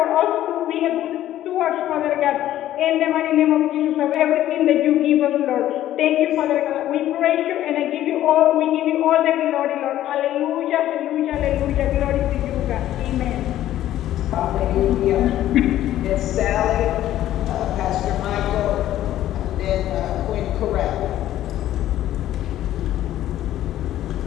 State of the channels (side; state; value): right; quieter; 13.0 dB